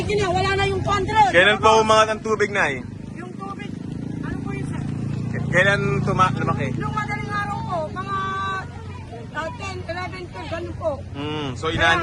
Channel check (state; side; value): identical; both; correlation 1.00